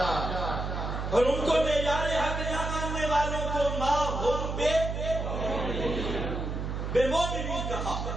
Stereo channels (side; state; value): right; noise; hum, 3 dB below the sound